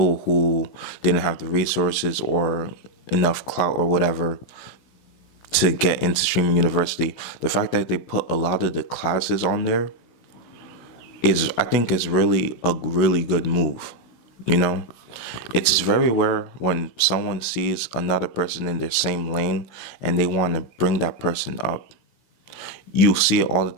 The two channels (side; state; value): right; late; 17 ms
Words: who didn't have the resources or enough clout or whatever to get into Streaming University. The fact that they put a lot of the classes on there I think is really a really good move. You know, it's very rare when someone sees another person in their same lane and they want to bring that person up. You see it all the